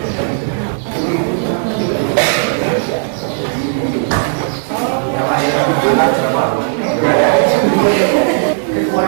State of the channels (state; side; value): silent; left; 63 dB below the other